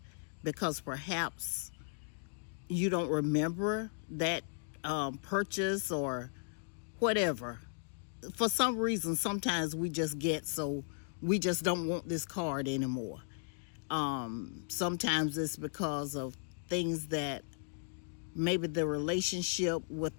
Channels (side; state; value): right; silent; digital silence